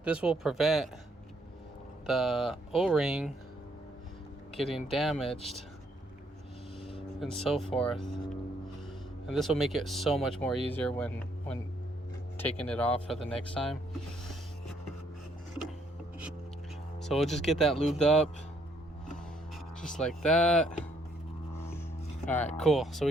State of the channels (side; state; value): both; normal; correlation 0.69